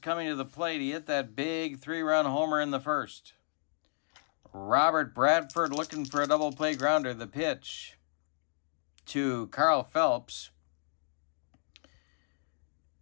to the plate. He hit that big 3-run homer in the first. Robert Bradford looking for a double play grounder. The pitch to Carl Phelps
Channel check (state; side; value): silent; right; digital silence